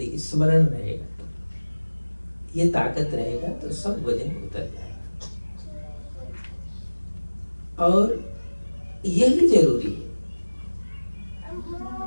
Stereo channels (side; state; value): both; inverted; correlation -1.00